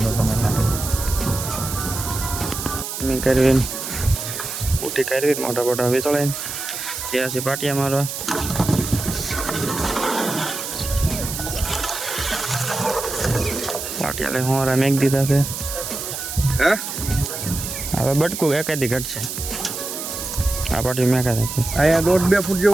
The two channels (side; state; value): right; noise; hiss, 6 dB below the sound